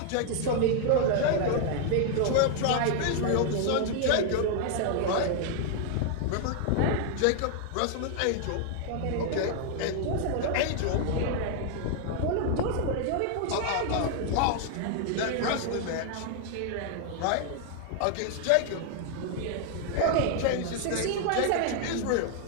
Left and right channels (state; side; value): different; both; correlation 0.00